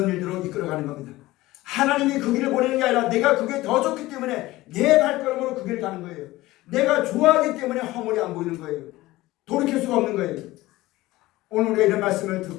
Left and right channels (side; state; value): right; quieter; 18.1 dB